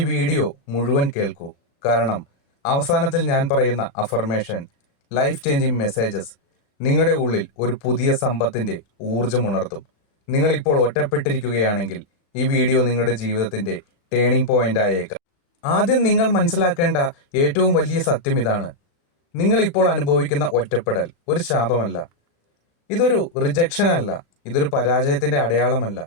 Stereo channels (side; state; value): right; late; 35 ms